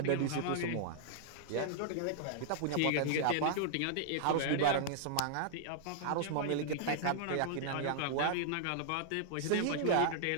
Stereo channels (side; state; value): both; different; correlation -0.01